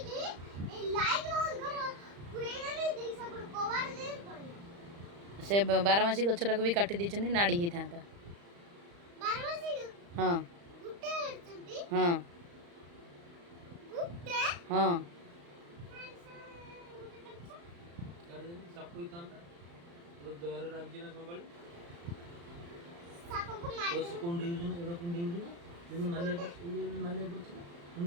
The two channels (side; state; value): left; late; 35 ms